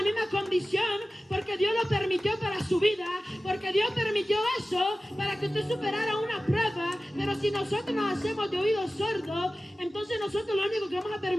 misma condición, porque Dios lo permitió para su vida, porque Dios permitió eso para que usted superara una prueba. Pero si nosotros nos hacemos de oídos sordos, entonces nosotros lo único que vamos a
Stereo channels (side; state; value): both; normal; correlation 0.96